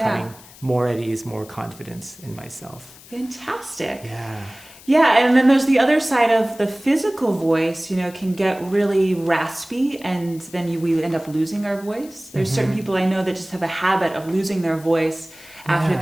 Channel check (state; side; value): noise; left; hiss, 21 dB below the sound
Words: more at ease, more confidence in myself. Fantastic. Yeah. Yeah, and then there's the other side of the physical voice, can get really raspy, and then we end up losing our voice. There's certain people I know that just have a habit of losing their voice after